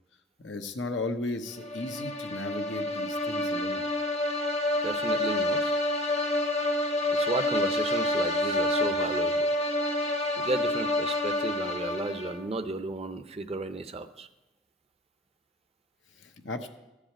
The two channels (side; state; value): both; normal; correlation 0.41